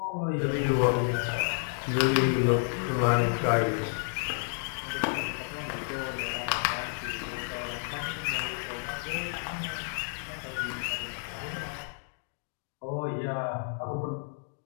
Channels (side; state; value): right; silent; 57 dB below the other